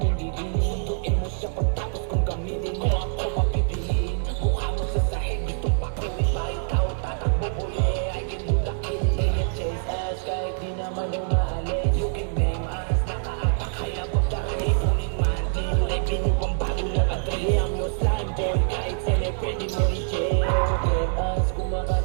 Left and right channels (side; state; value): left; silent; 62 dB below the other